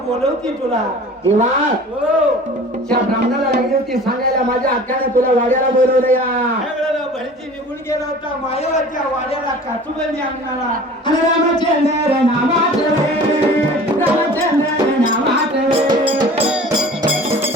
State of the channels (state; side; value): normal; both; correlation 0.43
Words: बोलवती तुला. देवा हो त्या ब्राह्मणाला लागली होती सांगायला माझ्या हक्काने तुला वाड्याला बोलवलं या. त्यावेळेला भरती निघून गेला होता मायावाच्या वाड्याला काचुबंदी अंगणाला. आणि रामचंद्र नामाचे रामचंद्र नामाचे